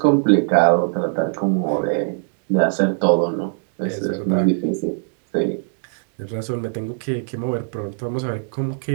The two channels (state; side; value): silent; left; digital silence